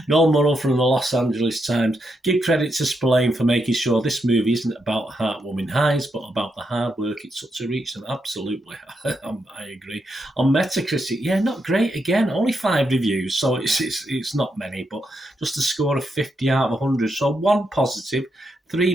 Noel Murrow from the Los Angeles Times, give credit to Spillane for making sure this movie isn't about heartwarming highs, but about the hard work it took to reach them. Absolutely, I agree. On Metacritic, not great again. Only 5 reviews, so it's not many, but just a score of 50 out of 100. So 1 positive, 3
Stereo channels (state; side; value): normal; both; correlation 0.82